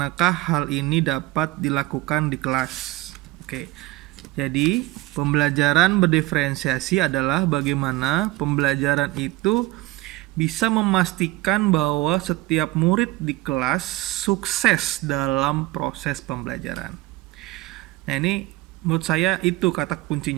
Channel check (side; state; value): left; quieter; 19.2 dB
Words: hal ini dapat dilakukan di kelas. Oke. Jadi, pembelajaran berdiferensiasi adalah bagaimana pembelajaran itu bisa memastikan bahwa setiap murid di kelas sukses dalam proses pembelajaran. Nah, ini menurut saya itu kata